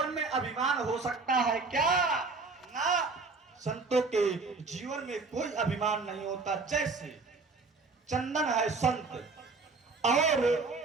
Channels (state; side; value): quieter; left; 4.1 dB